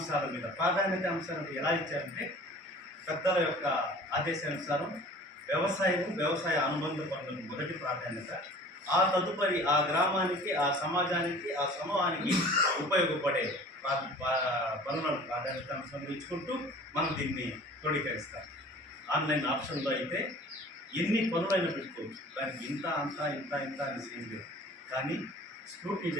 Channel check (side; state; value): both; normal; correlation 0.45